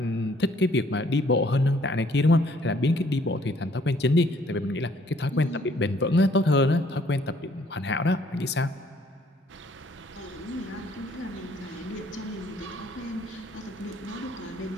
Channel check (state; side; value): normal; both; correlation 0.62